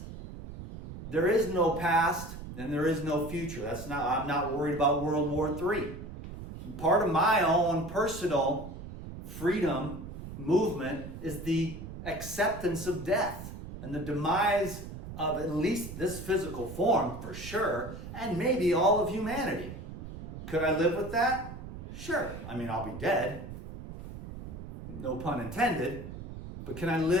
There is no past and there is no future. I'm not worried about World War III. Part of my own personal freedom movement is the acceptance of death and the demise of at least this physical form, for sure, and maybe all of humanity. Could I live with that? Sure. I'll be dead. No pun intended. But can I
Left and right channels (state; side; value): noise; right; rumble, 11 dB below the sound